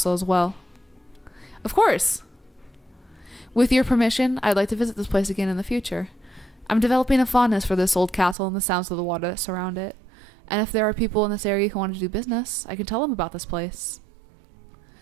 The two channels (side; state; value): left; drops out; at 8.3 s